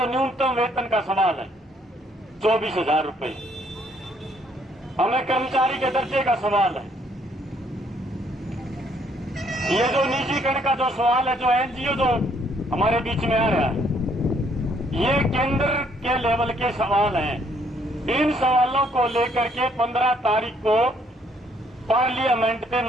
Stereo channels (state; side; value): normal; both; correlation 0.67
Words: न्यूनतम वेतन का सवाल है 24,000 रुपए, हमें कर्मचारी के दर्जे का सवाल है, ये जो निजीकरण का जो सवाल है, जो एनजीओ जो हमारे बीच में आ रहा है, ये केंद्र के लेवल के सवाल हैं। इन सवालों को लेकर के 15 तारीख को पार्लियामेंट पे